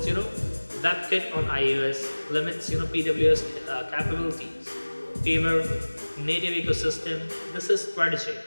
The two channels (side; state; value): both; inverted; correlation -1.00